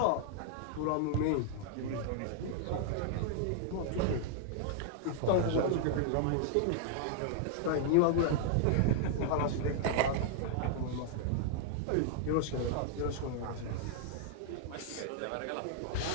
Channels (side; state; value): both; different; correlation -0.01